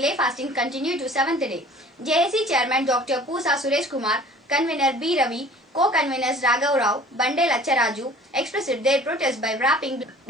fasting continued to 7th day. JAC Chairman Dr. Pusa Suresh Kumar, Convener B. Ravi, Co-Conveners Raghav Rao, Bande Lacharaju expressed their protest by wrapping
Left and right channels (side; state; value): both; normal; correlation 0.48